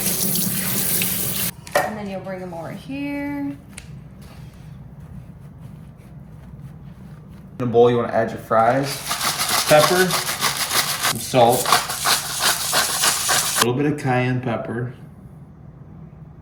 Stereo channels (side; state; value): both; identical; correlation 1.00